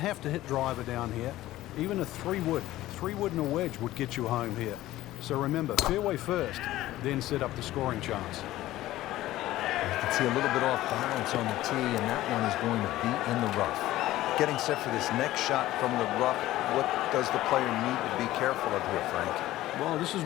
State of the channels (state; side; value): quieter; right; 15.6 dB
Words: to hit driver down here. Even a 3-wood and a wedge would get you home here. So remember, fairway first, then set up the scoring chance. You can see a little bit off balance on the tee, and that one is going to be in the rough. Getting set for this next shot from the rough, what does the player need to be careful of here, Frank? Well, this is